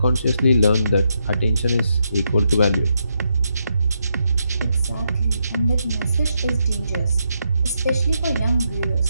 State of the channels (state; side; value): inverted; both; correlation -0.81